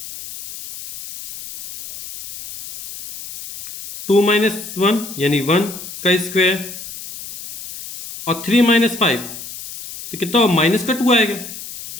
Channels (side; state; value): left; noise; hiss, 12 dB below the sound